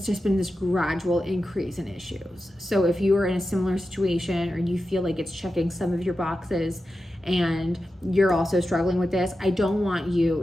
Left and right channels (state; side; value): normal; both; correlation 0.91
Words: just been this gradual increase in issues. So if you are in a similar situation or you feel like it's checking some of your boxes and you're also struggling with this, I don't want you